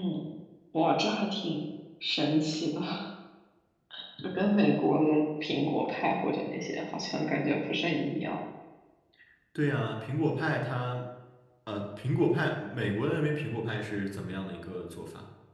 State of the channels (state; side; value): identical; both; correlation 1.00